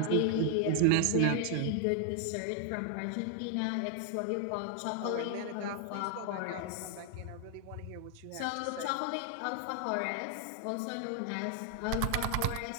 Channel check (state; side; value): different; both; correlation 0.00